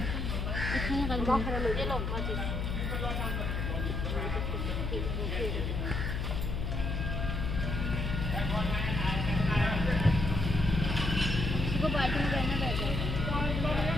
इसको बाल्टी में रहना पड़ेगा।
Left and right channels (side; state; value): left; noise; hum, 1 dB below the sound